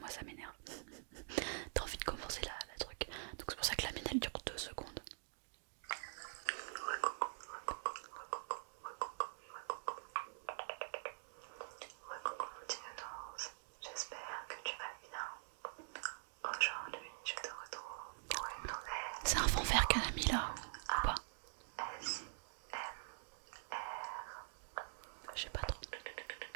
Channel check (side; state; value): left; silent; digital silence